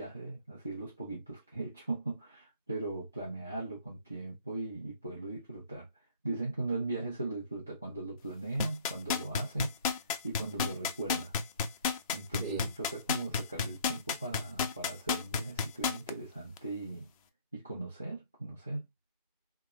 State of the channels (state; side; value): inverted; both; correlation -0.55